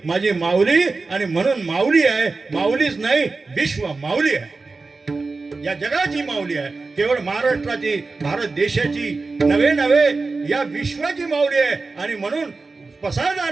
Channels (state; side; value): quieter; left; 3.9 dB